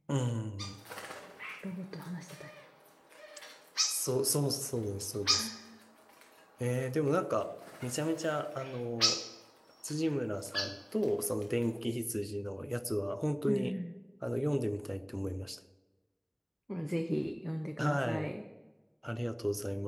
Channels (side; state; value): both; identical; correlation 1.00